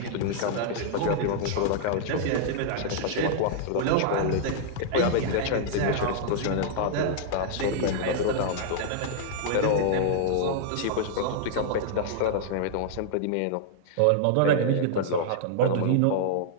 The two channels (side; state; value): both; different; correlation -0.01